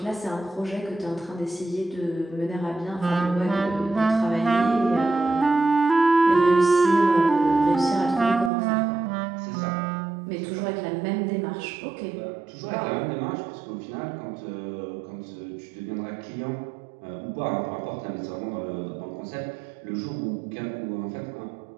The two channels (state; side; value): drops out; left; at 8.5 s